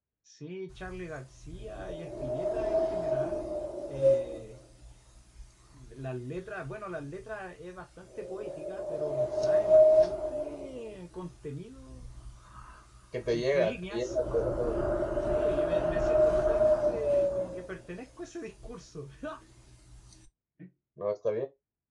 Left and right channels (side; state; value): both; identical; correlation 1.00